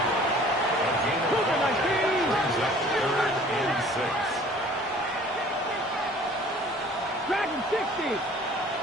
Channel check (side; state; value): both; normal; correlation 0.51